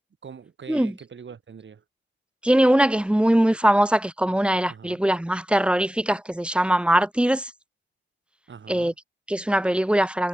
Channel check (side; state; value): both; normal; correlation 0.95